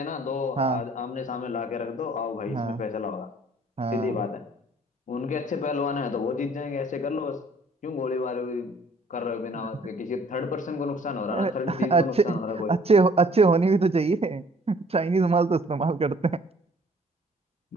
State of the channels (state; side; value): normal; both; correlation 0.57